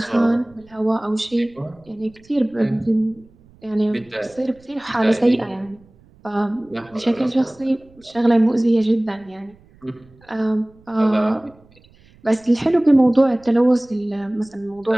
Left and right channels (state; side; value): noise; right; rumble, 28 dB below the sound